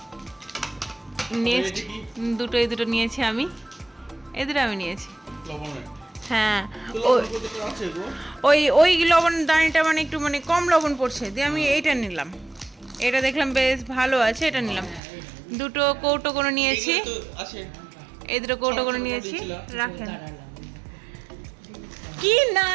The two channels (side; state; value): left; drops out; at 15.0 s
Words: নেক্সট এই দুটো নিয়েছি আমি এই দুটো আমি নিয়েছি লবণের হ্যাঁ লবণ কত আছে গো ওই লবণ দানিটা মানে একটু মানে কম লবণ পড়ছে দিয়ে আমি এইটা নিলাম এটা দেখলাম বেশ ভালো আছে এটা নিলাম দুটো কৌটো করে নিয়েছি এগুলো তো আছে এই দুটো কৌটো করে নিয়েছি রাখেন